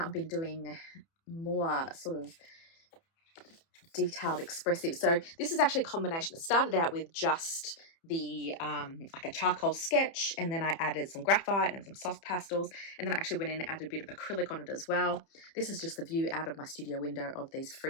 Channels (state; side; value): late; right; 30 ms